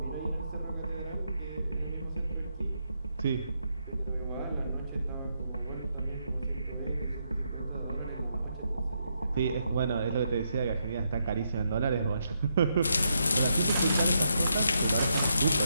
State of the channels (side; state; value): both; inverted; correlation -0.79